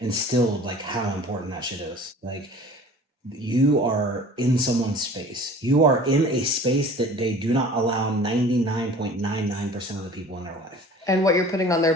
instilled like how important that shit is. Like you are in someone's space. You are in a space that they do not allow 99.99% of the people in their life. And what you're putting on their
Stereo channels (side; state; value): both; normal; correlation 0.44